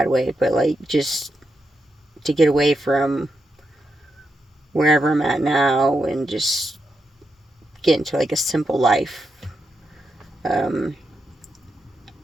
way, but like just to get away from wherever I'm at now and just get into like a simple life. Um,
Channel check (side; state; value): both; normal; correlation 0.85